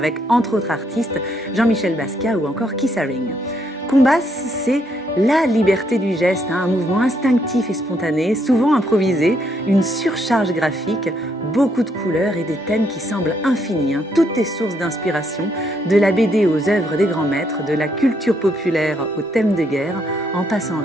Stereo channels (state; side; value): normal; both; correlation 0.73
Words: entre autres artistes Jean-Michel Basquiat ou encore Keith Haring. Combas, c'est la liberté du geste, un mouvement instinctif et spontané, souvent improvisé, une surcharge graphique, beaucoup de couleurs et des thèmes qui semblent infinis. Toutes les sources d'inspiration, de la BD aux œuvres des grands maîtres, de la culture populaire aux thèmes de guerre, en passant